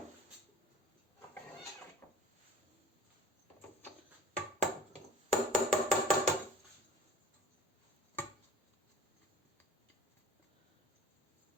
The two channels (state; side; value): normal; both; correlation 0.41